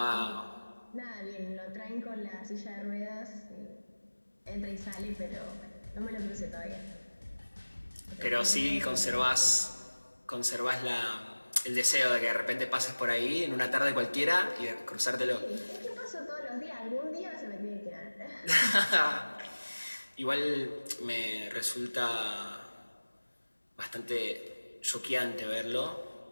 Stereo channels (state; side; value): inverted; both; correlation -1.00